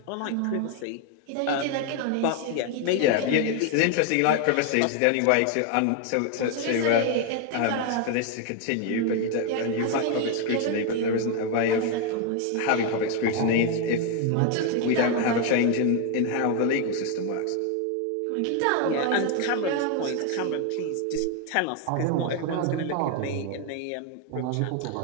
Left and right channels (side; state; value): both; different; correlation 0.01